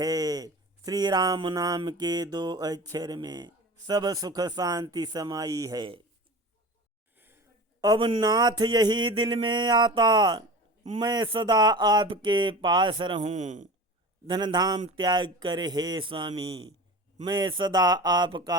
श्री राम नाम के 2 अक्षर में सब सुख शांति समाई है। अब नाथ यही दिल में आता मैं सदा आपके पास रहूं। धन धाम त्याग कर हे स्वामी मैं सदा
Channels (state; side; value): normal; both; correlation 0.33